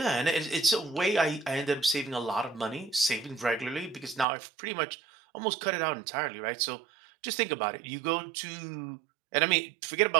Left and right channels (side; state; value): left; drops out; at 4.2 s